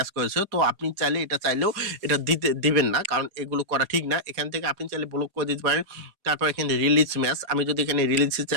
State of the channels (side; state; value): left; late; 4.9 ms